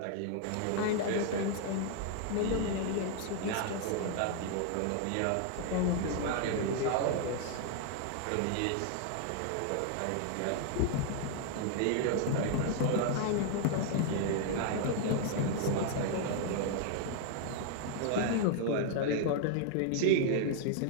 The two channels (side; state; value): both; different; correlation 0.00